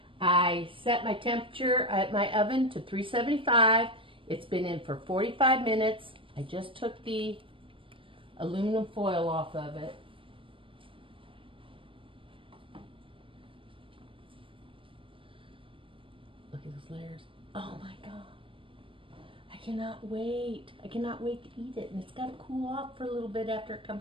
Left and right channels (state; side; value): late; left; 0.25 ms